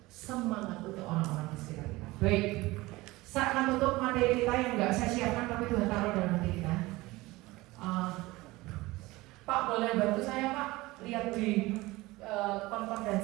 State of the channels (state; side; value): quieter; left; 20.3 dB